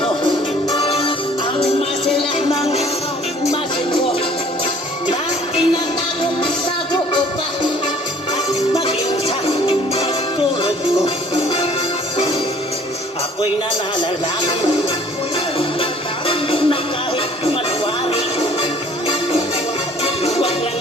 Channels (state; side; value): normal; both; correlation 0.55